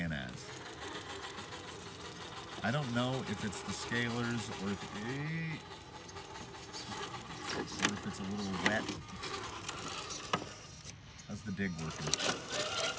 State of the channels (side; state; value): both; identical; correlation 1.00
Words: as. I don't know if it's the scalers or if it's a little wet. How's the dig working?